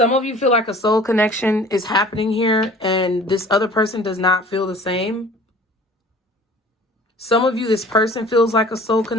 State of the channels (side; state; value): both; normal; correlation 0.47